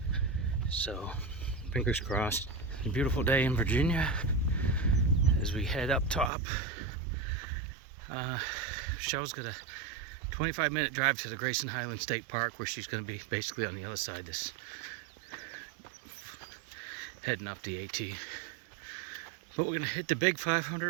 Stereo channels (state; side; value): drops out; left; at 6.3 s